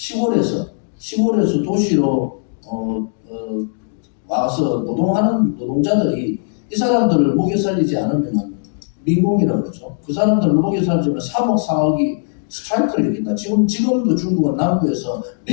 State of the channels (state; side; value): silent; right; digital silence